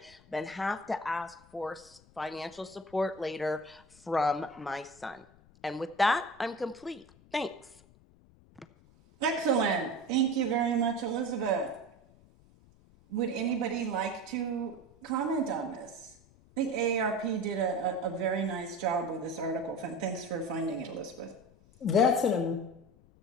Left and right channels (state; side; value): noise; left; rumble, 26 dB below the sound